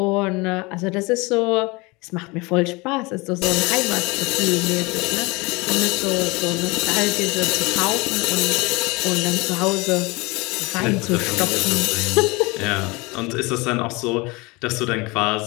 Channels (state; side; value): quieter; right; 25.1 dB